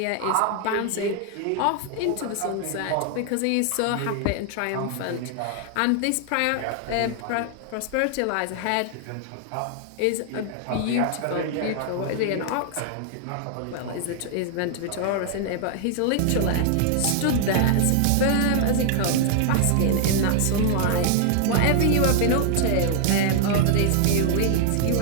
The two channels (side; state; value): both; different; correlation 0.00